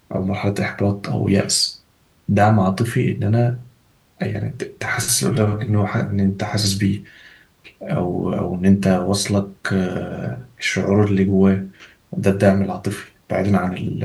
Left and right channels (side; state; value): both; identical; correlation 1.00